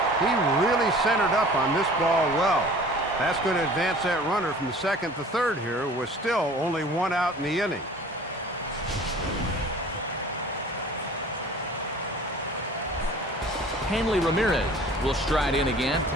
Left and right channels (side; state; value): both; normal; correlation 0.46